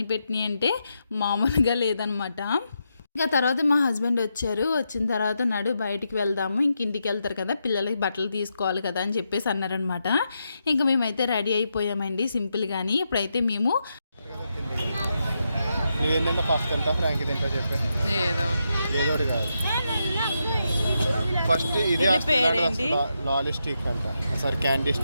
పెట్టినాయి అంటే మామూలుగా లేదనమాట. ఇంకా తర్వాత మా హస్బెండ్ వచ్చారు. వచ్చిన తర్వాత నడు బయటికి వెళ్దాము, ఇంక ఇంటికి వెళ్తారు కదా, పిల్లలకి బట్టలు తీసుకోవాలి కదా అని చెప్పేసి అన్నారనమాట. ఇంకా మేమైతే రెడీ అయిపోయామండి సింపుల్గాని. ఇప్పుడైతే మేము ఫస్ట్ ఇది లాలీ స్టిక్ అంట, సారీ క్యాండీ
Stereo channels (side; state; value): both; inverted; correlation -0.84